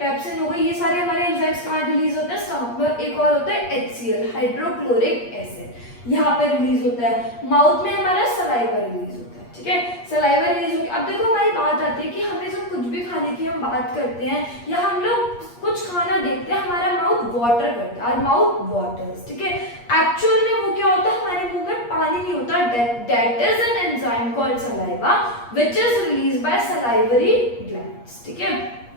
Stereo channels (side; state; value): right; late; 8.4 ms